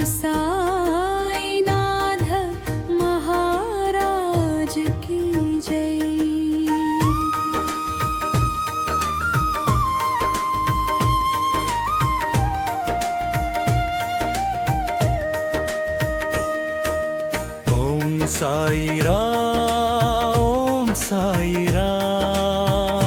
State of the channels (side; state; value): both; identical; correlation 1.00